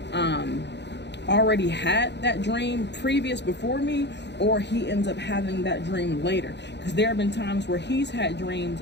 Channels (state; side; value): late; right; 0.50 ms